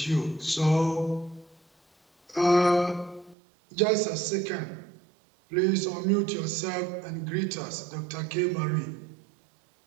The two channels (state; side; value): drops out; left; at 3.4 s